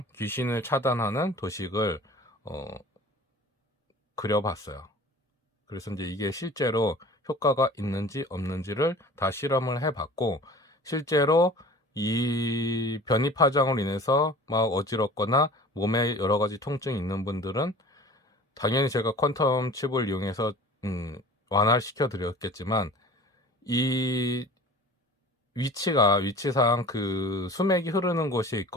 귀신을 차단하는 도식을 그려봤어요. 그래서 이제 이게 실제로 효과가 있는지 없는지를 다 실험을 해봤고, 실제로 이 변이 파장으로 인해서 막 어지럽거나 몸에 여러 가지 통증이 있는 분들은 당연히 제가 퀀텀 칩을 이용해서 완화시켜 드렸겠지만, 이 위치상 그 수맥이 흐르는 곳에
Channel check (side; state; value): both; normal; correlation 0.43